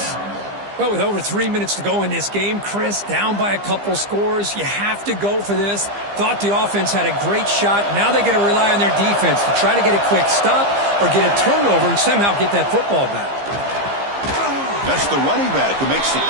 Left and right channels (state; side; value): late; left; 15 ms